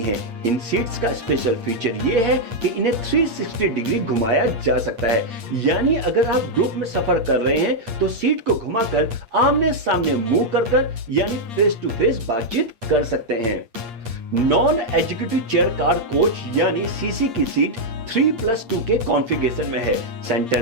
हैं। इन सीट्स का स्पेशल फीचर ये है कि इन्हें 360 डिग्री घुमाया जा सकता है, यानी अगर आप ग्रुप में सफर कर रहे हैं तो सीट को घुमाकर आमने सामने मुंह कर यानी फेस टू फेस बातचीत कर सकते हैं। Non executive chair car coach यानी सीसी की सीट 3+2 के कॉन्फ़िगरेशन में है।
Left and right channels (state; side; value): late; left; 8.5 ms